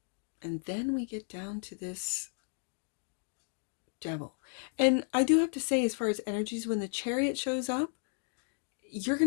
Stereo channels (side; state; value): right; silent; 55 dB below the other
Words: And then we get down to this Devil. And I do have to say, as far as energies, when the Chariot shows up, you're